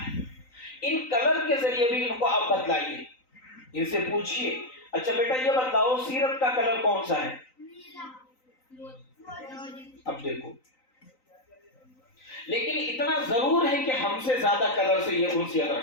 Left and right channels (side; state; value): right; late; 3.9 ms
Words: ان کلر کے ذریعے بھی ان کو آپ بتلائیے، ان سے پوچھیے اچھا بیٹا یہ بتلاؤ سیرت کا کلر کون سا ہے. اب دیکھو، لیکن اتنا ضرور ہے کہ ہم سے زیادہ کلر سے یہ انسیت